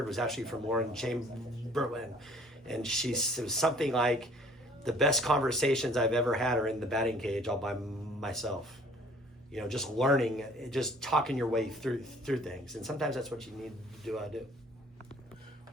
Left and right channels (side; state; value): both; normal; correlation 0.55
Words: was actually from Lauren Chamberlain, and she said something like, the best conversations I've ever had are in the batting cage all by myself. You know, just learning, just talking your way through things. And sometimes that's what you need to do.